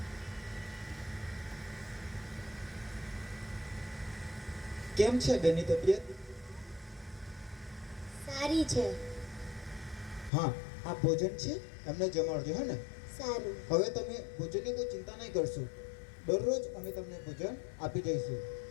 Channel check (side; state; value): right; drops out; at 10.3 s